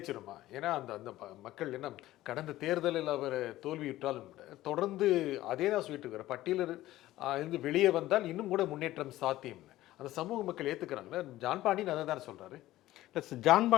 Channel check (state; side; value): quieter; right; 15.6 dB